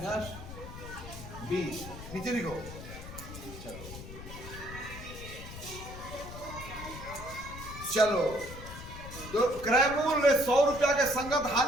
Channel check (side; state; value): left; noise; rumble, 12 dB below the sound